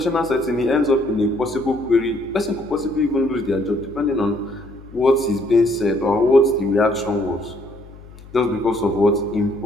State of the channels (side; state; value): left; noise; hum, 19 dB below the sound